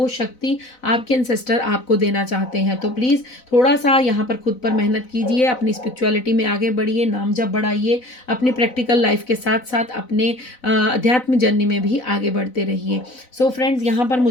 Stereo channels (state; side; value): late; right; 4.0 ms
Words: शक्ति आपके एंसेस्टर आपको देना चाहते हैं। तो प्लीज़ थोड़ा सा यहाँ पर खुद पर मेहनत कीजिए, अपनी स्पिरिचुअलिटी में आगे बढ़िए, नाम जप बढ़ाइए, अपनी प्रैक्टिकल लाइफ के साथ साथ अपने अध्यात्म जर्नी में भी आगे बढ़ते रहिए। सो फ्रेंड्स, यहाँ पर